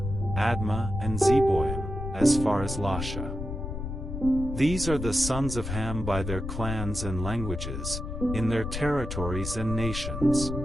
Admah and Zeboim, as far as Lasha. These are the sons of Ham by their clans and languages, in their territories and nations.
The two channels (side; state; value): left; noise; rumble, 6 dB below the sound